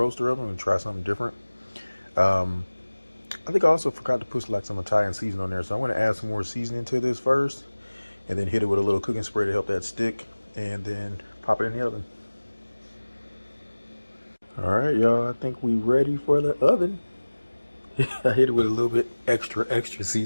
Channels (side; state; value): both; inverted; correlation -1.00